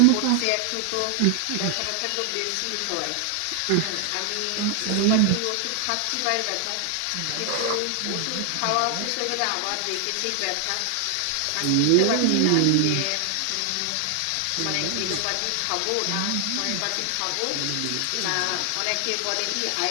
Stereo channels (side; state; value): both; different; correlation 0.00